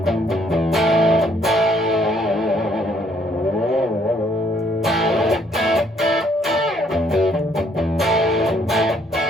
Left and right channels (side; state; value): both; normal; correlation 0.66